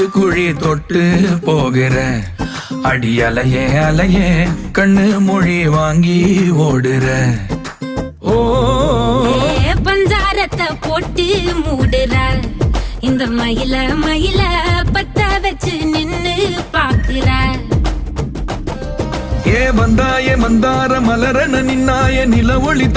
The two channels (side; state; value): both; identical; correlation 1.00